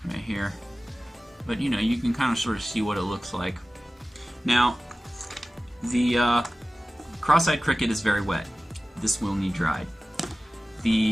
right here, but you know, you can kind of sort of see what it looks like. Now, the cross-eyed cricket is very wet. This will need dried.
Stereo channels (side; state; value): both; normal; correlation 0.96